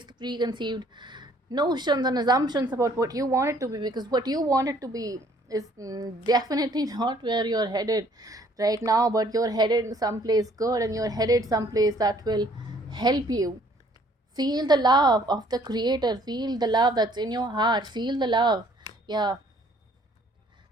the preconceived notions and assumptions about what you want it to be, because what you want it to be is definitely not where you're headed right now, but you're headed someplace good, and you're headed someplace that will help you feel the love of the creator, feel the love that's in your heart, feel the love. Yeah,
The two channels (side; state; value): both; normal; correlation 0.60